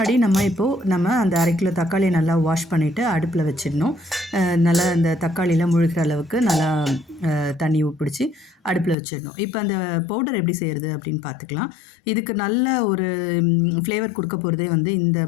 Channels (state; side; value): drops out; right; at 9.0 s